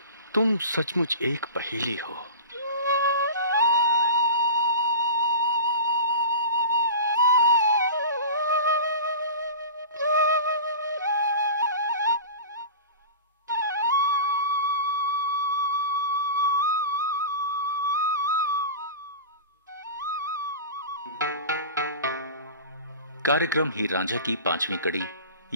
तुम सचमुच एक पहेली हो। कार्यक्रम हीर रांझा की 5वीं कड़ी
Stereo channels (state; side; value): inverted; both; correlation -0.34